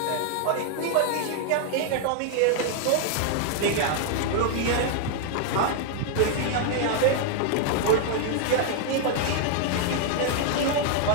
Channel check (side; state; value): both; different; correlation 0.00